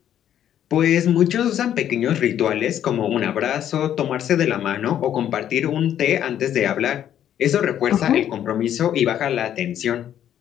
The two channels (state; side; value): quieter; right; 10.5 dB